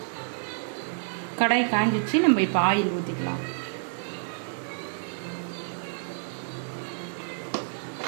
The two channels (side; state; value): left; silent; digital silence